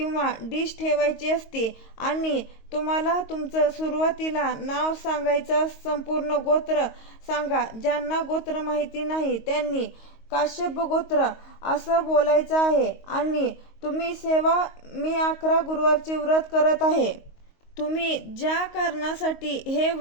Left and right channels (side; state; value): right; late; 22 ms